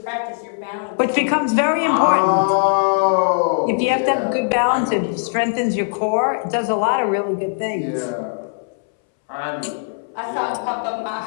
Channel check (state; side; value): silent; right; 66 dB below the other